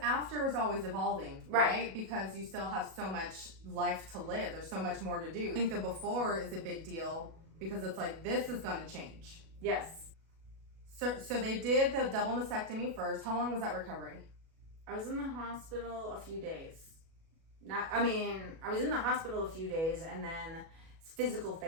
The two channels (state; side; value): late; left; 37 ms